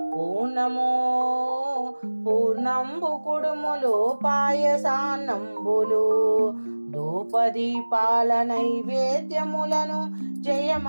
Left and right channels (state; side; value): inverted; both; correlation -1.00